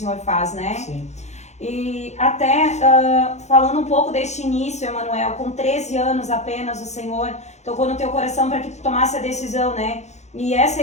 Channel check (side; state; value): right; late; 0.33 ms